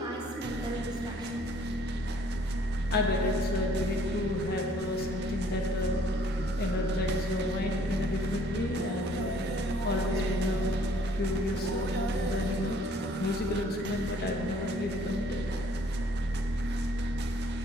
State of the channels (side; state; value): both; normal; correlation 0.60